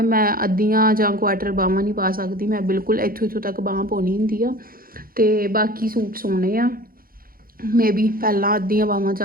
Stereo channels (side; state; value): left; late; 0.42 ms